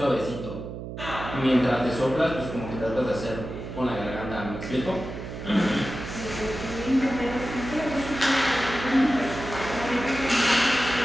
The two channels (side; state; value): right; noise; hum, 9 dB below the sound